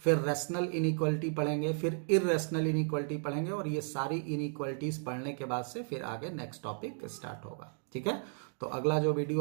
रैशनल इनइक्वालिटी पढ़ेंगे, फिर इररेशनल इनइक्वालिटी पढ़ेंगे, और ये सारी इनइक्वालिटीज़ पढ़ने के बाद से फिर आगे नेक्स्ट टॉपिक स्टार्ट होगा। ठीक है, तो अगला जो वीडियो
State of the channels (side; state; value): left; silent; 55 dB below the other